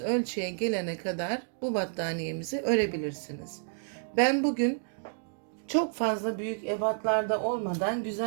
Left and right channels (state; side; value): silent; left; digital silence